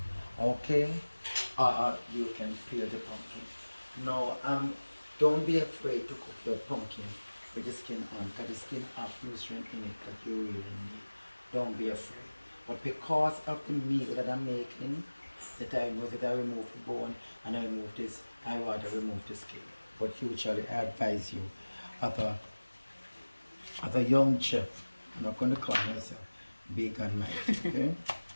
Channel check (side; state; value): both; inverted; correlation -1.00